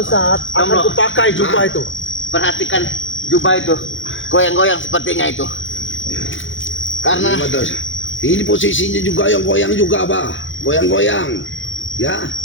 saat akan Tomblo. kupakai jubah itu. perhatikan jubah itu. Goyang-goyang sepertinya itu. Karena Ini betul. Ini posisinya juga yang goyang juga, Bah. Goyang-goyang. Ya.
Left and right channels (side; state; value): right; late; 0.56 ms